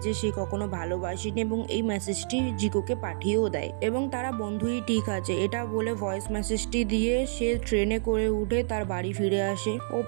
যে সে কখনো ভালোবাসেনি এবং এই মেসেজটি জিকোকে পাঠিয়েও দেয় এবং তারা বন্ধুই ঠিক আছে এটা বলে ভয়েস মেসেজটি দিয়ে সে ট্রেনে করে উঠে তার বাড়ি ফিরে আসে।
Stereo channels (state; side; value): silent; left; 59 dB below the other